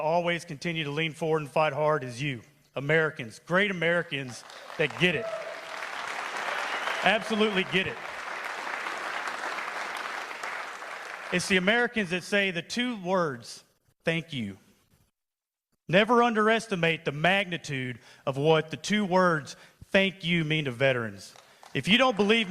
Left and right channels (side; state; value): both; identical; correlation 1.00